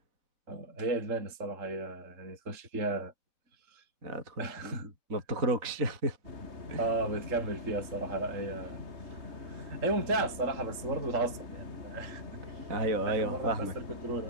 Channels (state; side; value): late; left; 3.7 ms